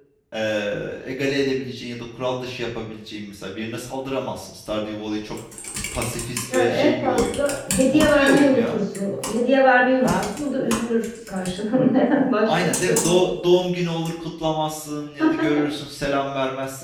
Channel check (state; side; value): identical; both; correlation 1.00